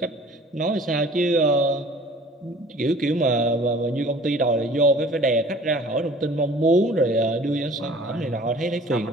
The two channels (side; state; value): both; normal; correlation 0.48